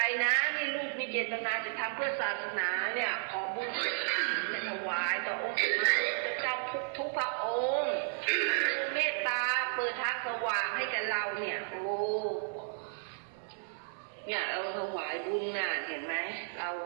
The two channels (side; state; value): left; silent; digital silence